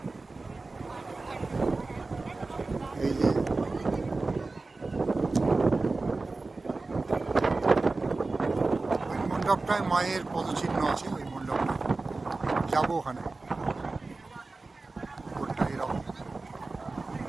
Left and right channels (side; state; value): left; quieter; 3.5 dB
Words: এই যে ওই মণ্ডপটায় মায়ের পদচিহ্ন আছে, ওই মণ্ডপটা যাবো ওখানে। উপরটা এরকম।